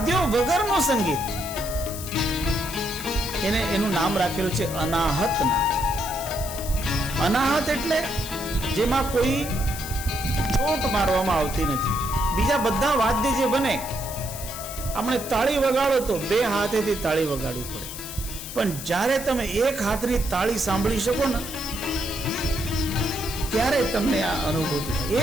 વગરનું સંગીત, એનું નામ રાખેલું છે અનાહત નાદ. અનાહત એટલે જેમાં કોઈ ચોટ મારવામાં આવતી નથી. બીજા બધા વાદ્ય જે બને, આપણે તાળી વગાડો તો બે હાથેથી તાળી વગાડવી પડે, પણ જ્યારે તમે એક હાથની તાળી સાંભળી શકો ને, ત્યારે તમને આ અનુભૂતિ થાય.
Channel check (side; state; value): left; noise; hiss, 10 dB below the sound